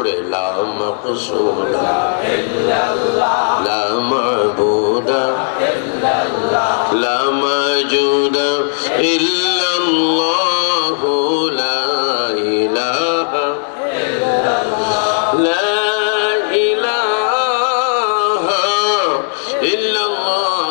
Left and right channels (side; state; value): right; silent; digital silence